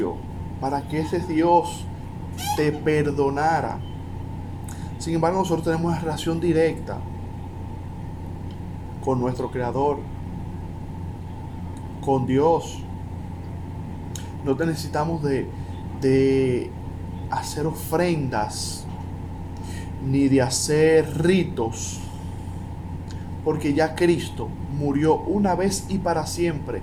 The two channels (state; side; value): identical; both; correlation 1.00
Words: para que ese Dios te perdonara. Sin embargo, nosotros tenemos una relación directa con nuestro Creador, con Dios. No necesitamos de hacer ofrendas ni de hacer ritos, porque ya Cristo murió una vez y para siempre.